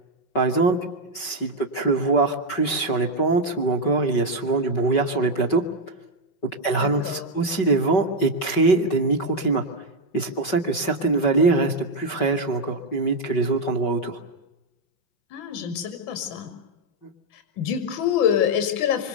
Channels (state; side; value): late; right; 5.3 ms